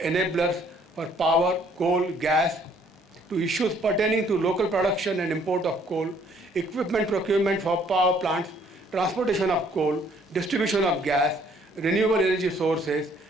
enablers for power, coal, gas, to issues pertaining to local production and import of coal, equipment procurement for power plants, transportation of coal, distribution of gas, renewable energy sources,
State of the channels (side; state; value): both; normal; correlation 0.62